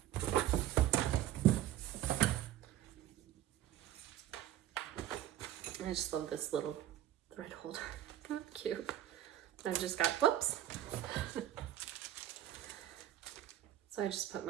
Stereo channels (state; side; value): quieter; left; 12.7 dB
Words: I just love this little thread holder. Isn't that cute? I've just got, whoops. So I just put